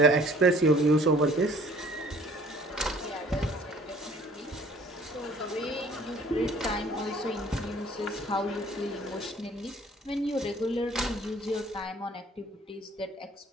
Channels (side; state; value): both; normal; correlation 0.54